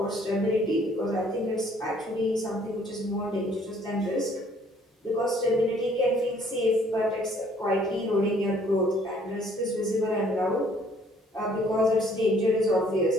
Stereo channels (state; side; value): normal; both; correlation 0.60